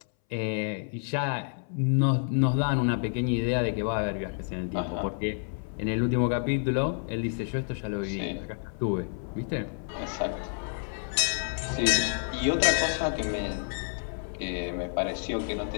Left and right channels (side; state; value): right; silent; 59 dB below the other